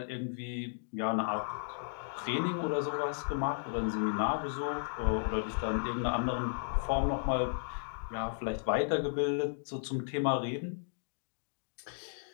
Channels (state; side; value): silent; right; digital silence